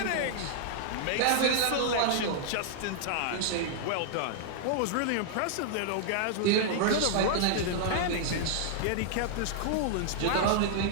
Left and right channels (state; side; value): different; both; correlation -0.01